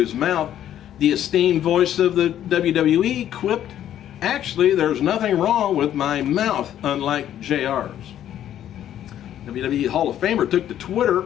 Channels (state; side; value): quieter; right; 11.1 dB